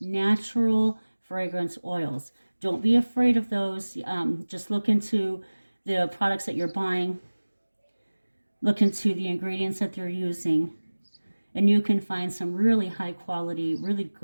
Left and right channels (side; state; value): both; inverted; correlation -1.00